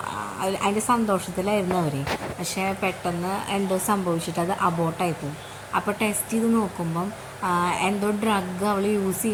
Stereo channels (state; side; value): identical; both; correlation 1.00